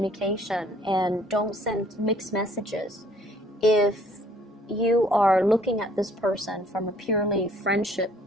and don't send mixed messages. If you are looking at this person from a purely friendship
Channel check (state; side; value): normal; both; correlation 0.60